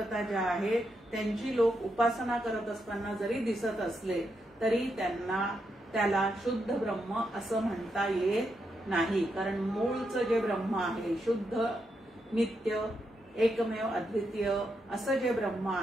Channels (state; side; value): normal; both; correlation 0.82